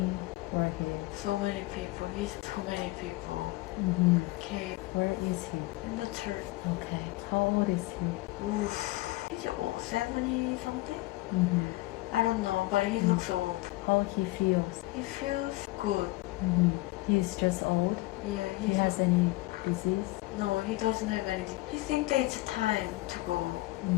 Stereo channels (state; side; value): quieter; right; 20.3 dB